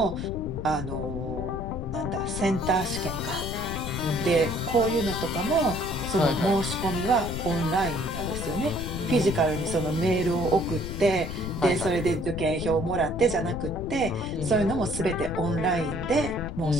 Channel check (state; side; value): noise; left; rumble, 6 dB below the sound